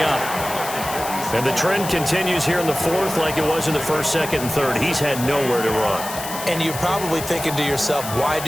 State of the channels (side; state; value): left; noise; hiss, 9 dB below the sound